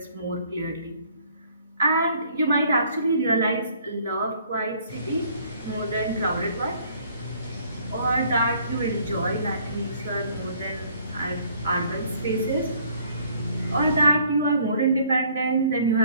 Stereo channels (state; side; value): inverted; both; correlation -0.60